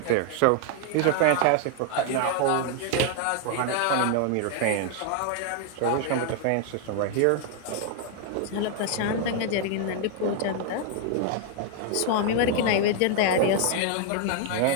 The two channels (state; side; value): different; both; correlation 0.00